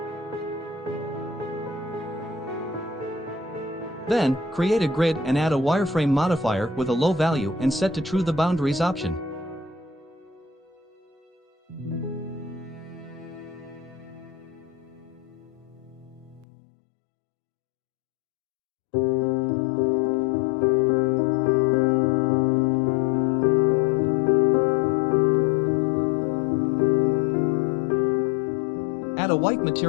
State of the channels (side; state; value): right; drops out; at 16.4 s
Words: Then, create a grid and add a wireframe modifier with a low value and set to true the boundaries option. Add a white